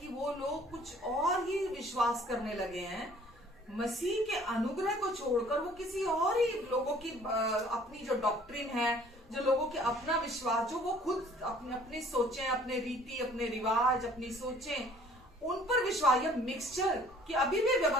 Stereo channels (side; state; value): both; normal; correlation 0.55